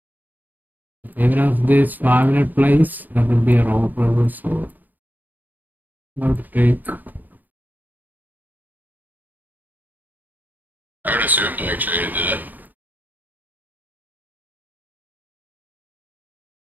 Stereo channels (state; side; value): late; left; 0.084 ms